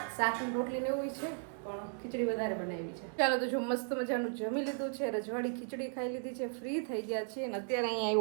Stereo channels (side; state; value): left; silent; 54 dB below the other